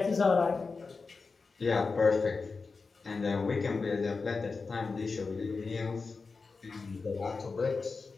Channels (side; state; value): right; quieter; 4.4 dB